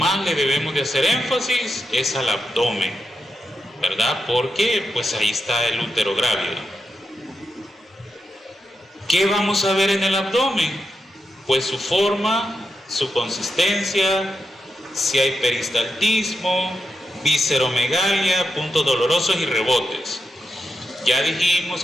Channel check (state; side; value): normal; both; correlation 0.87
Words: le debemos de hacer énfasis es al abdomen, ¿verdad? Porque pues ahí está el útero grávido. ¿Qué vamos a ver en el abdomen? Pues su forma, su consistencia, si hay peristaltismo, visceromegalia, puntos dolorosos y rebotes. Ya dijimos